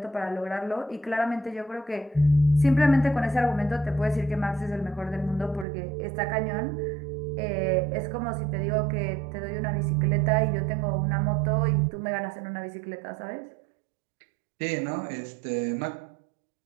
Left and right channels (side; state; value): left; drops out; at 5.7 s